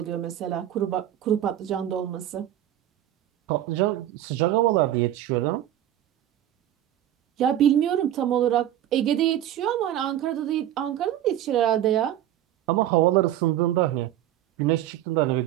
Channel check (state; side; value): quieter; left; 12.3 dB